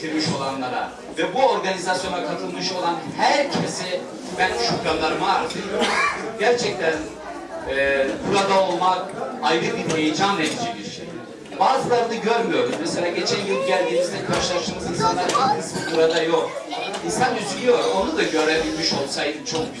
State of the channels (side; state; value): both; identical; correlation 1.00